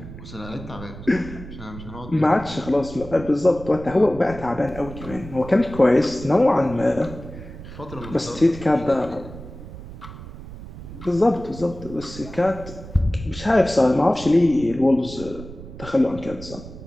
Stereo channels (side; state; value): right; noise; rumble, 14 dB below the sound